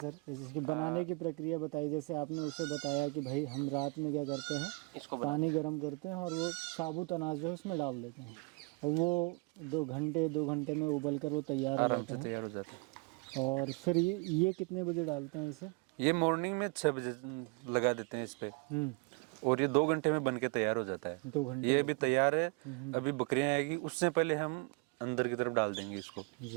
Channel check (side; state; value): left; quieter; 29.8 dB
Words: जैसे इसके बनाने की प्रक्रिया बताइए। जैसे आपने उसे बताया कि भाई हम रात में क्या करते हैं, इसको पानी गर्म करते हैं और वो साबुत अनाज जो है उसमें डाल देते हैं और वो 2 घंटे में उबल कर वो तैयार हो आराम जाता से है। तैयार हो जाता है। और फिर ये कितने बजे डालते हैं इसे? ये मॉर्निंग में 6 बजे लगा देते हैं इस पे, और ये 2 घंटे में बन के तैयार हो जाता है। 2 घंटे? ये भी तैयार है। अभी बकरियां आएगी उससे पहले हम अंदर की तरफ डाल देंगे इसको,